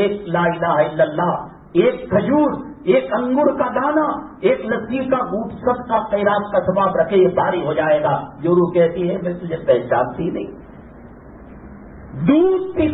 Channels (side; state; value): both; identical; correlation 1.00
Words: ایک لا الہ الا اللہ, ایک کھجور, ایک انگور کا دانا, ایک لسی کا گھونٹ سب کا خیرات کا ثواب رکھے, یہ بھاری ہو جائے گا. جو روح کہتی ہے میں تجھے پہچانتی نہیں, دودھ کی